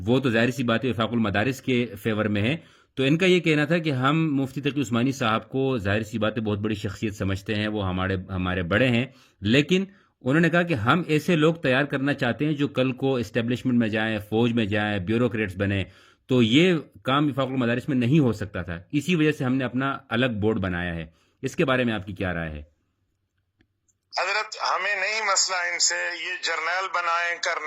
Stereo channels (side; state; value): both; identical; correlation 1.00